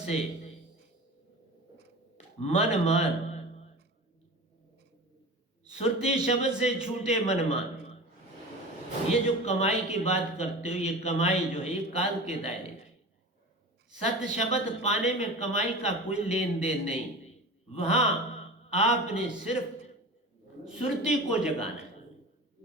मन मान, सुरती शब्द से छूटे मन मान। ये जो कमाई की बात करते हो, ये कमाई जो है ये काल के दायरे की। सत शब्द पाने में कमाई का कोई लेन देन नहीं। वहां आपने सिर्फ सुरती को जगाना है।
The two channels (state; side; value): normal; both; correlation 0.33